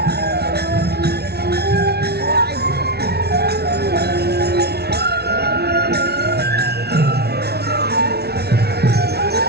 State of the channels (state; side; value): late; left; 0.47 ms